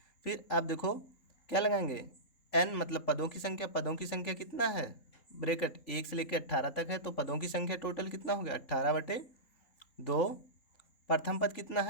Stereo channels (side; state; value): right; late; 3.8 ms